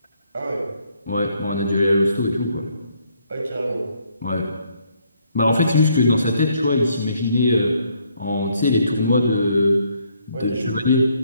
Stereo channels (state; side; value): inverted; both; correlation -0.70